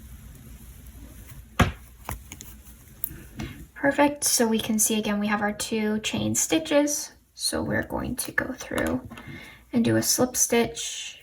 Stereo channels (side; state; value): both; identical; correlation 1.00